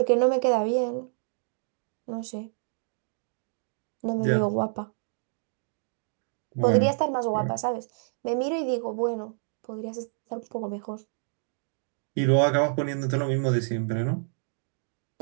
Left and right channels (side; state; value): left; silent; digital silence